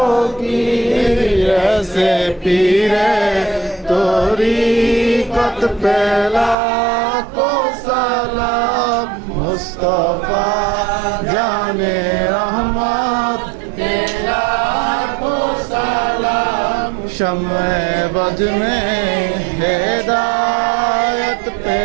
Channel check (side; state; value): left; drops out; at 6.6 s